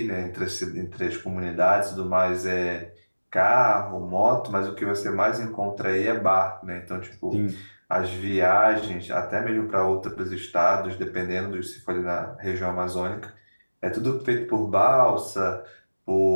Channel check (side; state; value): both; inverted; correlation -1.00